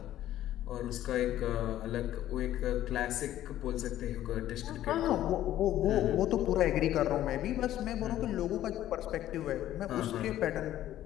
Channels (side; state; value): right; quieter; 13.0 dB